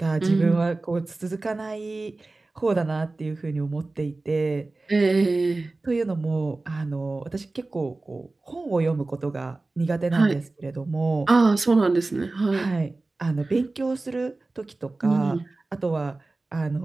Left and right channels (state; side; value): quieter; left; 3.2 dB